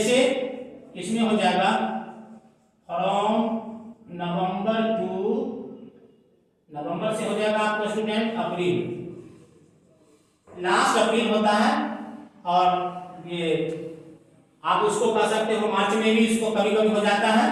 इसमें हो जाएगा फ्रॉम नवंबर टू, नवंबर से हो जाएगा आपका स्टूडेंट अप्रैल, लास्ट अप्रैल होता है, और ये आप उसको कह सकते हो मार्च में भी इसको कभी कभी हो जाता है,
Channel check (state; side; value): identical; both; correlation 1.00